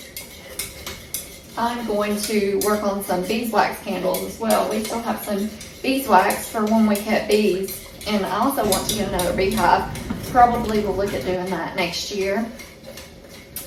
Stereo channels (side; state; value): both; identical; correlation 1.00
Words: I'm going to work on some beeswax candles as well. We still have some beeswax for when we cut bees, and I also want to get another beehive. Probably will look at doing that next year.